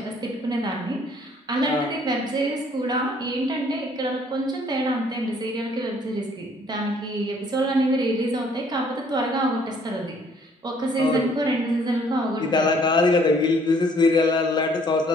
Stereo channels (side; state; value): both; normal; correlation 0.61